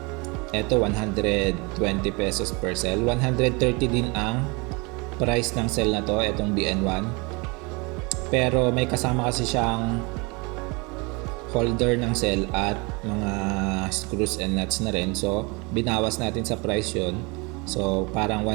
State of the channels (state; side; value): quieter; left; 28.4 dB